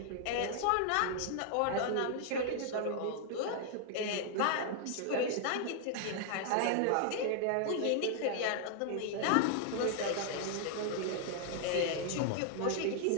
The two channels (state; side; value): different; both; correlation 0.00